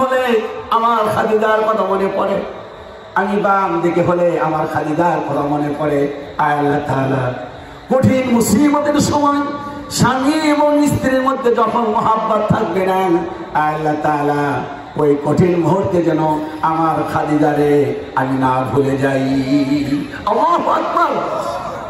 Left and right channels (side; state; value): both; identical; correlation 1.00